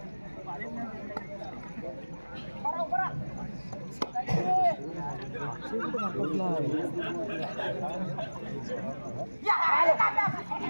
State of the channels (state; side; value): inverted; both; correlation -1.00